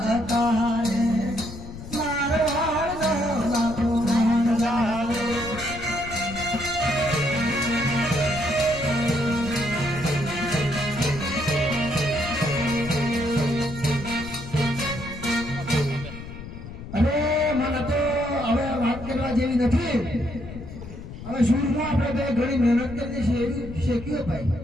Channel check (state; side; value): noise; left; rumble, 12 dB below the sound